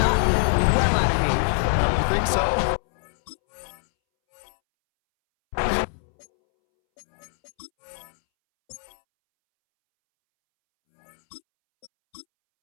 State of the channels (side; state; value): right; silent; 63 dB below the other